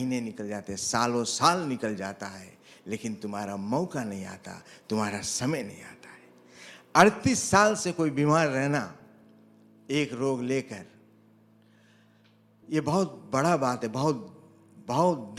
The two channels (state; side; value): identical; both; correlation 1.00